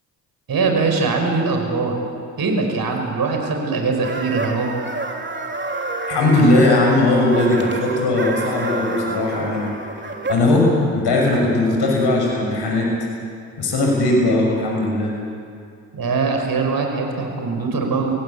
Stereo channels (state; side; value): normal; both; correlation 0.33